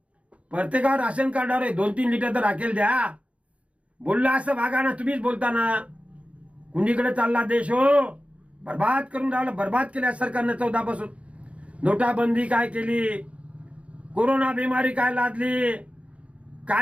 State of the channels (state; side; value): late; left; 0.063 ms